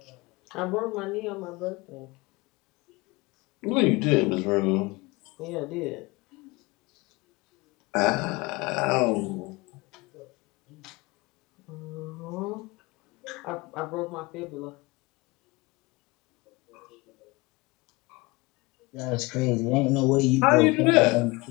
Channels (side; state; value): right; quieter; 24.0 dB